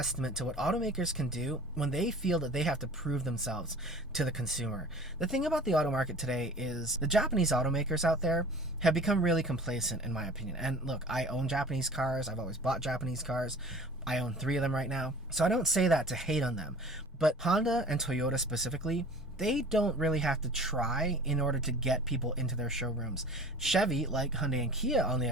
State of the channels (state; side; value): normal; both; correlation 0.44